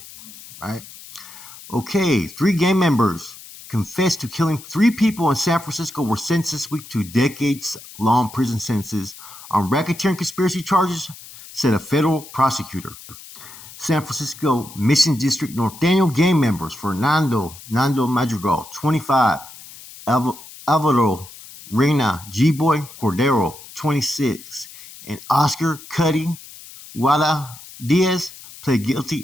Right? Okay, 3 gang members confessed to killing 3 people in San Francisco were sentenced this week to decades-long prison sentences on racketeering conspiracy charges, said a federal prosecutor. San Francisco Mission District Norteno gang members Fernando Madrigal, 25, Alvaro Reyna G-Boy Cordero, 26, and Oscar Cuddy Guada Diaz pled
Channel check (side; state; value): left; noise; hiss, 17 dB below the sound